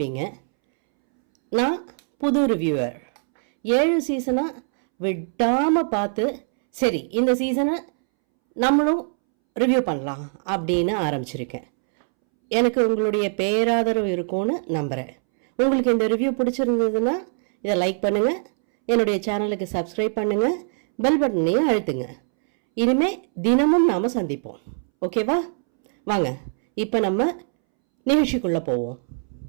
நான் புது ரிவ்யூவர், 7 சீசனாக விடாமல் பார்த்து சரி இந்த சீசனை நம்மளும் ரிவ்யூ பண்ணலாம் அப்படின்னு ஆரம்பிச்சிருக்கேன். எனக்கு உங்களுடைய பேராதரவு இருக்கும்னு நம்புகிறேன். உங்களுக்கு இந்த ரிவ்யூ பிடிச்சிருந்ததுன்னா இதை லைக் பண்ணுங்கள், என்னுடைய சேனலுக்கு சப்ஸ்கிரைப் பண்ணுங்கள், பெல் பட்டனையும் அழுத்துங்க. இனிமேல் தினமும் நாம் சந்திப்போம். ஓகேவா? வாங்க இப்போ நம்ம நிகழ்ச்சிக்குள்ளே போவோம்.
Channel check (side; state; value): left; silent; 64 dB below the other